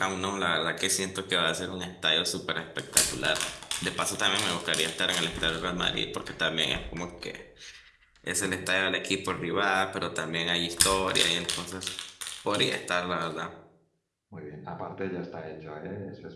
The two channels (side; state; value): both; identical; correlation 1.00